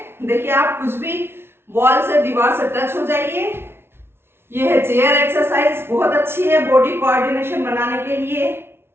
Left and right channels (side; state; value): left; late; 0.12 ms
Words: देखिए, आप कुछ भी वॉल से, दीवार से टच हो जाइए। ये है चेयर एक्सरसाइज, बहुत अच्छी है बॉडी कोऑर्डिनेशन बनाने के लिए।